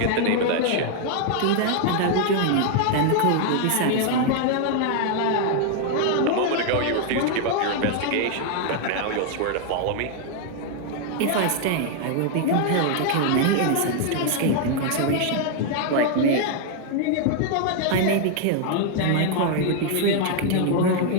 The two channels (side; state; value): both; different; correlation 0.00